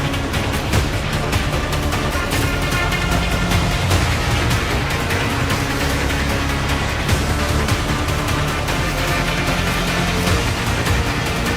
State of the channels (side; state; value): both; identical; correlation 1.00